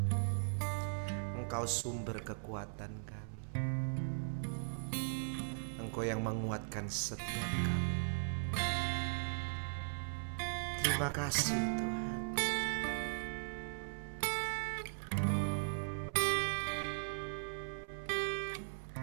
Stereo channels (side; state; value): left; silent; 52 dB below the other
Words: Engkau sumber kekuatan kami. Engkau yang menguatkan setiap kami. Terima kasih Tuhan.